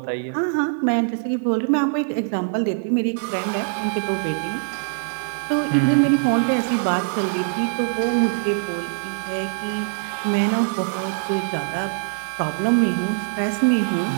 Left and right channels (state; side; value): silent; left; digital silence